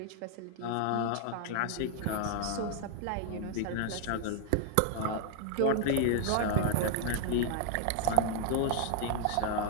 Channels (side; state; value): both; different; correlation 0.00